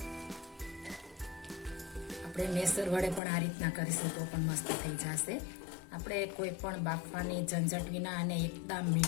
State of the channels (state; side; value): drops out; right; at 3.2 s